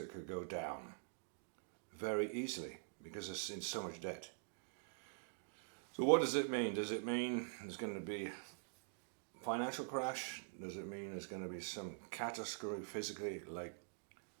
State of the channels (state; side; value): silent; left; digital silence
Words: could go down very easily because it's in so much debt. So what does it mean? Does it mean there's going to be a financial crash? Does it mean there's going to be some catastrophe physically, like